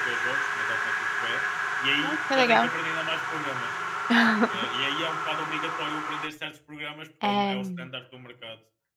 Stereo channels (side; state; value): both; identical; correlation 1.00